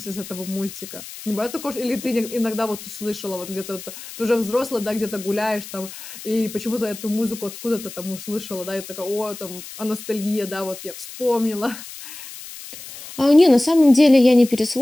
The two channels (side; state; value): left; noise; hiss, 14 dB below the sound